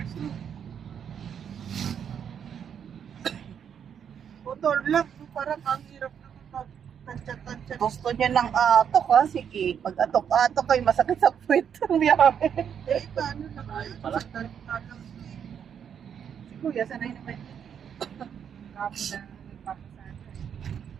na. Motor lang. Parang ang hirap naman mag-tansya-tansya. Gusto niya ng atok ha. Sige, pag atok-atok ay masakit sa puwet. Biyahe. Eh, paano naman? Pala. Sa talang Si Kuya, sanay naman yun. Kapo na nagpapasada.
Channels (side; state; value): left; quieter; 8.1 dB